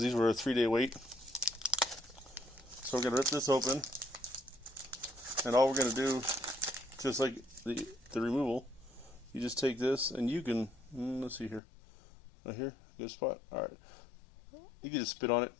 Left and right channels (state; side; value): drops out; right; at 11.6 s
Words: these were a 3-day wait. So we're going to rip this open, and all we're going to do, just like the removal, you just take this and you can Let's see here. Right here, good spot. All right, you can just spit on it,